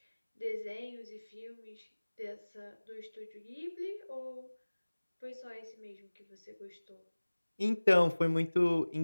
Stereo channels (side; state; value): both; inverted; correlation -1.00